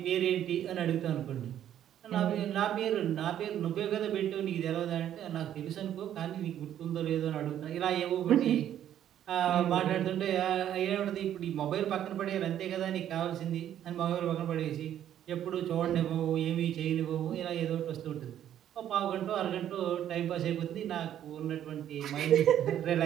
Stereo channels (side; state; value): left; quieter; 10.8 dB